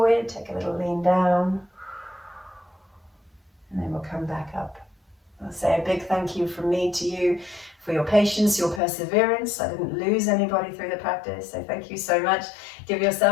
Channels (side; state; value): right; drops out; at 8.8 s